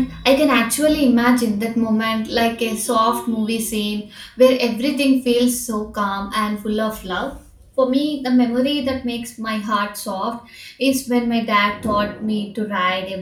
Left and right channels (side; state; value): both; identical; correlation 1.00